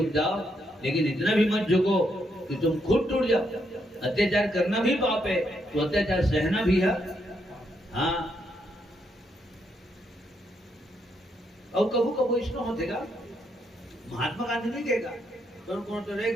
जाओ लेकिन इतना भी मत झुको कि तुम खुद टूट जाओ। अत्याचार करना भी पाप है तो अत्याचार सहना भी है हाँ। और कबू कबू इसमें होतेगा महात्मा गांधी नहीं कहेगा तो कौन तो रे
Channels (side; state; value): both; normal; correlation 0.77